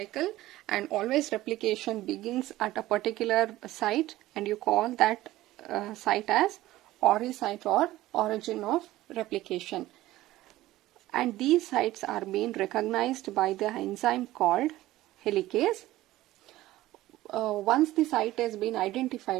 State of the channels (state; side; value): quieter; left; 16.2 dB